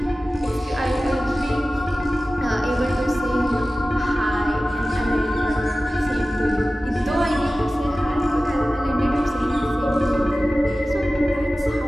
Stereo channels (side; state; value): both; normal; correlation 0.96